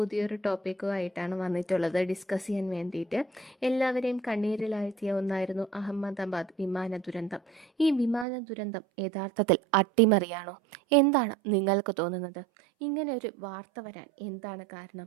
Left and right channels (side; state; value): left; drops out; at 8.2 s